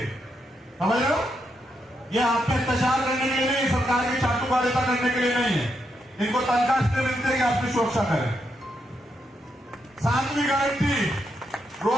समझ रहे हो, ये आप पे अत्याचार करने के लिए नहीं, सरकार की चाटुकारिता करने के लिए नहीं है। इनको तनख्वाह इसलिए मिलती है कि आपकी सुरक्षा करें। 7वीं गारंटी,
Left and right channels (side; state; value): both; normal; correlation 0.81